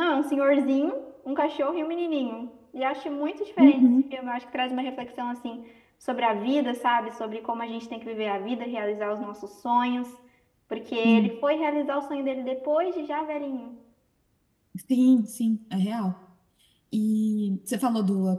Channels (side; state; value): both; identical; correlation 1.00